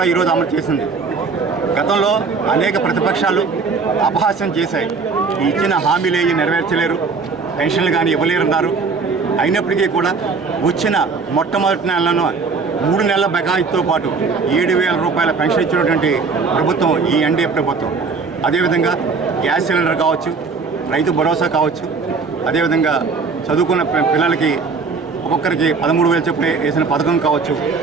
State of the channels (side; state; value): left; quieter; 4.7 dB